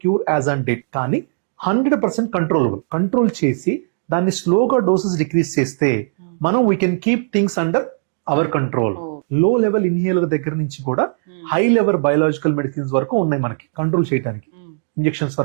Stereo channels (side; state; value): left; silent; digital silence